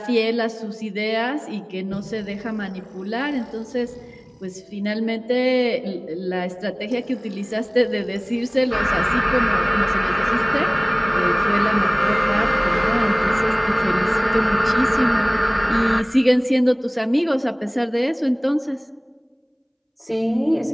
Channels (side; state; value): both; identical; correlation 1.00